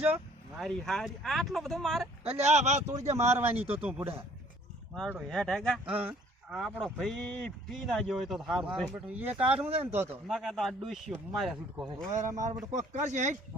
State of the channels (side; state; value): both; normal; correlation 0.57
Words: મારી હારી આટલો બધો મારે અલ્યા આ વાત તોડી દે મારવાની તો તું બુડા મારો હેઠ હેગા હા આપણો ભાઈ પી ના ગયો હોય તો સારું મારો છે બેટો એ કાઢું છે ને તો ના કે તો આ ડોશીઓ મારે છૂટકો છે ઓરે મારો બેટો કોક કરશે હેટ